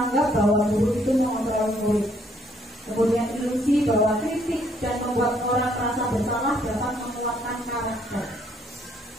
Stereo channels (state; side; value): normal; both; correlation 0.67